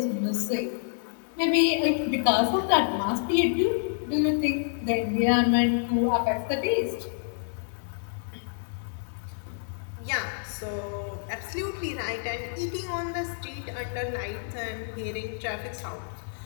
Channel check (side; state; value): right; silent; digital silence